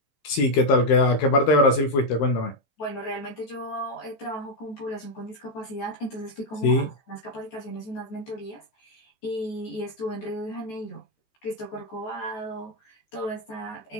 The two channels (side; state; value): right; late; 14 ms